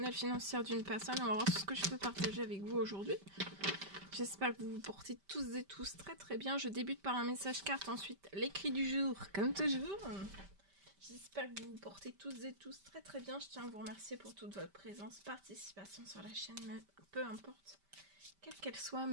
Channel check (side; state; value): left; late; 5.1 ms